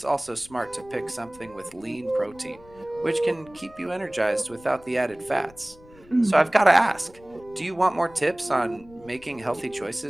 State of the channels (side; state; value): left; noise; rumble, 24 dB below the sound